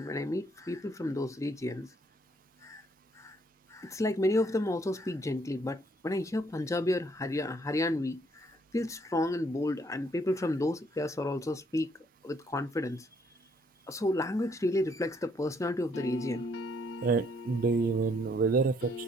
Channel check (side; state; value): both; normal; correlation 0.68